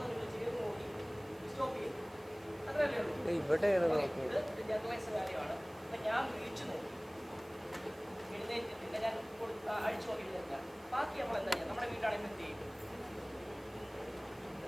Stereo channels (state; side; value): noise; right; hiss, 26 dB below the sound